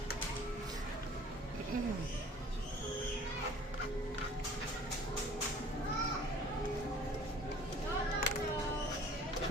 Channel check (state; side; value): normal; both; correlation 0.49